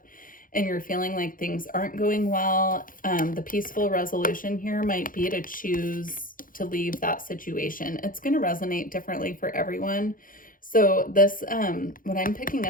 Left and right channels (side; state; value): right; late; 0.40 ms